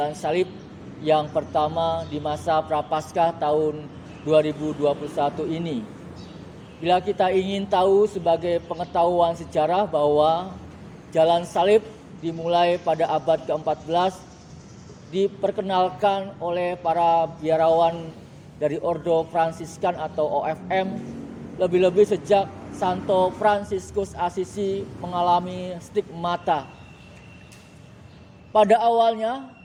Salib yang pertama di masa Prapaskah tahun 2021 ini. Bila kita ingin tahu sebagai pengetahuan sejarah bahwa Jalan Salib dimulai pada abad ke-14, diperkenalkan oleh para biarawan dari Ordo Fransiskan atau OFM, lebih-lebih sejak Santo Fransiskus Assisi mengalami stigmata. Pada awalnya,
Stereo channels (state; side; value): identical; both; correlation 1.00